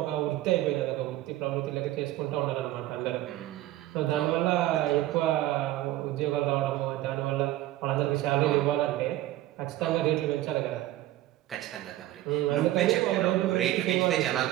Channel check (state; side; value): quieter; left; 15.3 dB